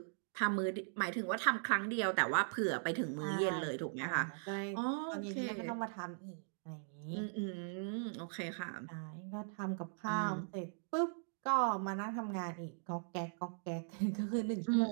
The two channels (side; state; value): left; silent; digital silence